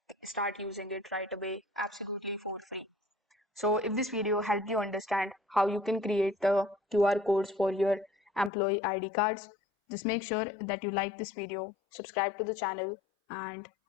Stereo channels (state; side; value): drops out; right; at 8.5 s